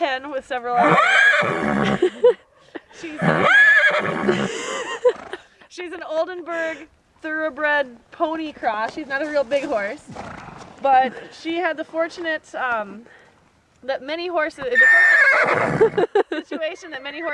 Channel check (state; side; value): identical; both; correlation 1.00